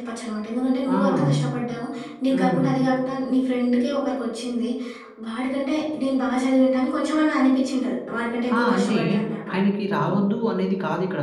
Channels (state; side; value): identical; both; correlation 1.00